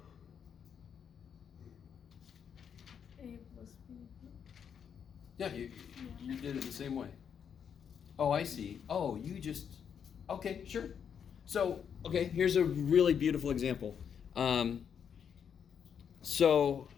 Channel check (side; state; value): right; quieter; 7.7 dB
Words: A plus B. Yeah, you did it the same way. Oh, I see. Oh, you just, okay, sure. So, okay, here's a really beautiful example. So